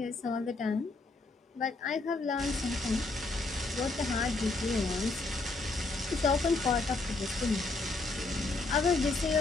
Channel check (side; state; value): right; quieter; 3.5 dB